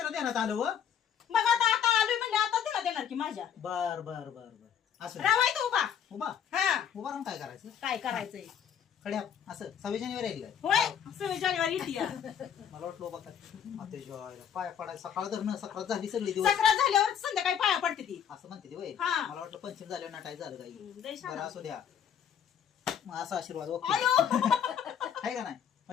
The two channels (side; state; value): right; quieter; 8.5 dB